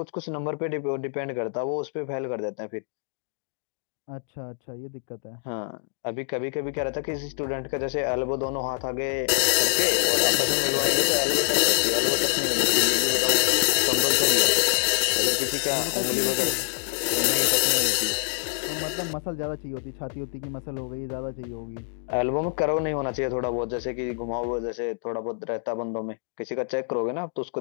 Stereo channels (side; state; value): right; silent; digital silence